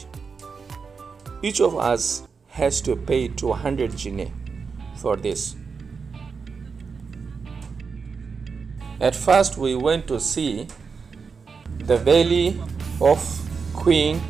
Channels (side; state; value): left; quieter; 5.3 dB